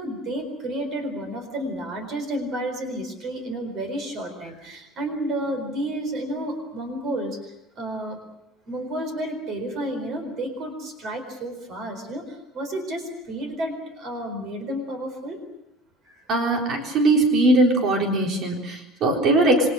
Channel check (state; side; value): normal; both; correlation 0.41